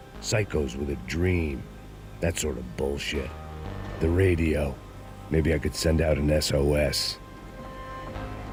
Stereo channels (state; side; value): identical; both; correlation 1.00